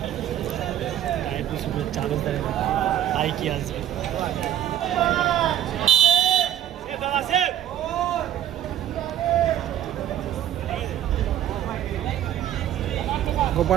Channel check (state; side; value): quieter; left; 11.5 dB